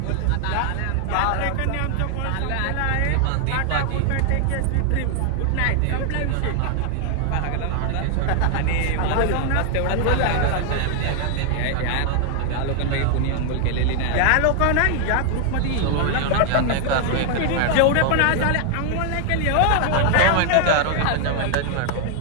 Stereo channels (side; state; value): both; different; correlation 0.00